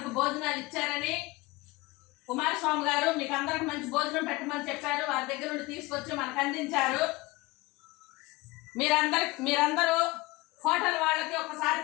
భోజనాలు ఇచ్చారని కుమారస్వామి గారు మీకు అందరికి మంచి భోజనం పెట్టమని చెప్పారు. వారి దగ్గర నుండి తీసుకొచ్చి మనకు అందించారు. మీరందరూ హోటల్ వాళ్ళకి ఒకసారి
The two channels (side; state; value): right; quieter; 21.8 dB